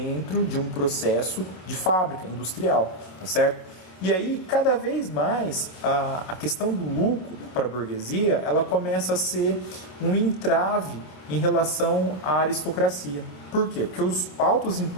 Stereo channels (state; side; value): late; right; 27 ms